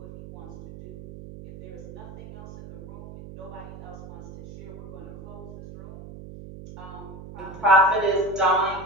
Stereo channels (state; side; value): noise; right; hum, 14 dB below the sound